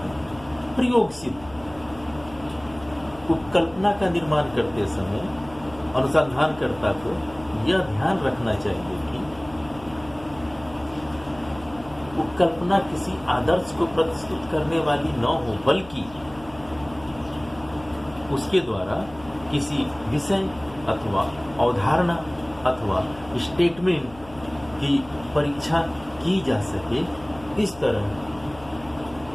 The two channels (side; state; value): left; noise; hum, 20 dB below the sound